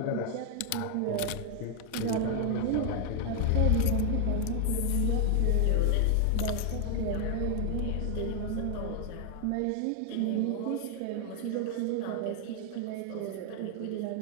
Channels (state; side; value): different; both; correlation 0.00